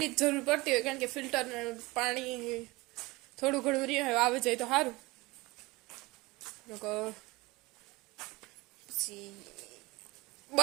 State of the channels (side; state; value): left; quieter; 22.3 dB